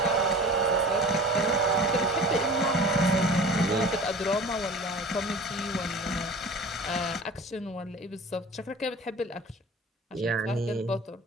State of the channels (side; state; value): both; normal; correlation 0.40